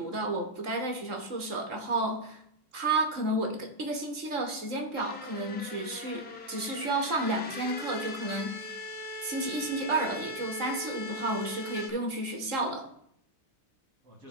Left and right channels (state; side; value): late; left; 3.7 ms